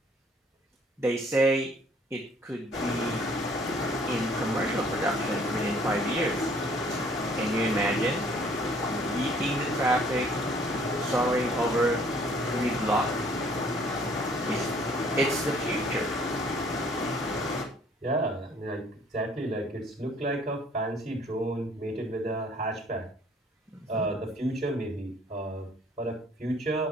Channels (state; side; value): normal; both; correlation 0.58